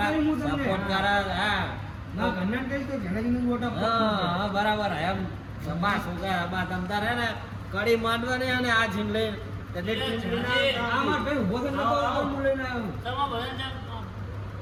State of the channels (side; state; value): both; identical; correlation 1.00